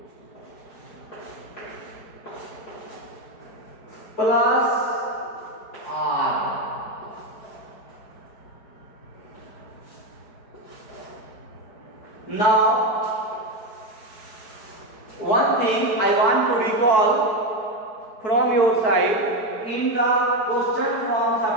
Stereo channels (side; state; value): right; late; 4.6 ms